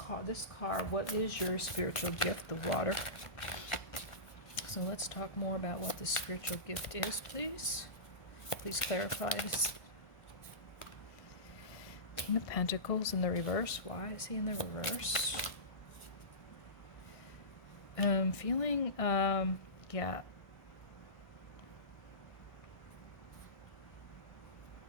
what is your spiritual gift? The water. So let's talk more about what this spiritual gift is, please. Please clarify this. King of Pentacles in the reverse. Why is he in the reverse? Feeling, yeah.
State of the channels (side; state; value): right; late; 1.5 ms